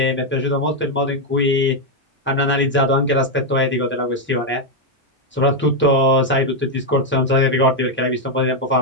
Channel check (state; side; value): normal; both; correlation 0.02